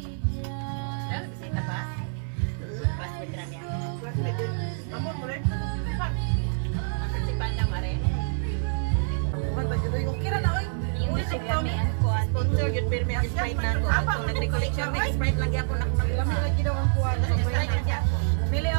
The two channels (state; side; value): silent; left; digital silence